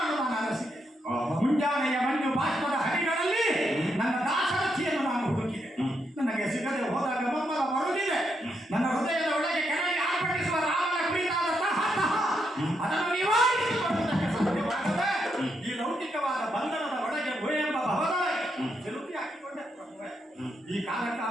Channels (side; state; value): both; normal; correlation 0.80